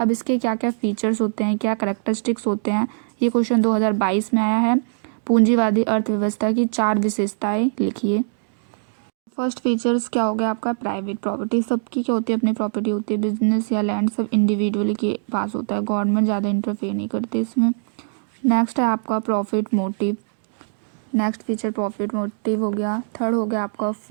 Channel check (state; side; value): silent; left; digital silence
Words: इसके क्या क्या फीचर्स होते हैं, क्या करेक्टरिस्टिक्स होते हैं, ये क्वेश्चन 2022 में आया है। पूंजीवादी अर्थव्यवस्था की 4 विशेषताएं लिखिए। फर्स्ट फीचर्स क्या हो गया आपका, प्राइवेट प्रॉपर्टी, सबकी क्या होती है, अपनी प्रॉपर्टी होती है। बिजनेस या लैंड सब इंडिविजुअली के पास होता है, गवर्नमेंट ज़्यादा इंटरफेयर नहीं करती इसमें। नेक्स्ट है आपका profit motive, next feature profit motive हो गया। थर्ड हो गया आपका